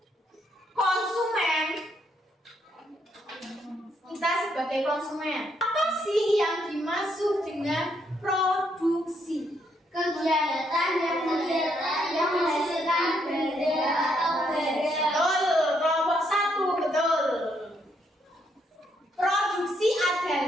konsumen? Kita sebagai konsumen, apa sih yang dimaksud dengan produksi? Kegiatan yang menghasilkan benda atau barang. Betul, kelompok 1, betul. Produksi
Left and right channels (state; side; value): normal; both; correlation 0.74